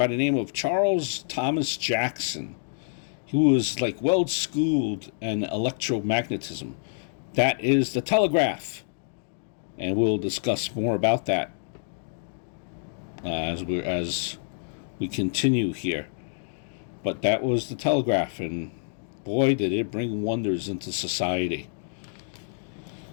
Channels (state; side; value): silent; right; digital silence